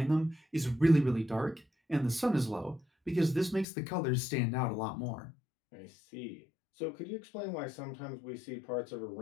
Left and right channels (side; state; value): right; drops out; at 3.7 s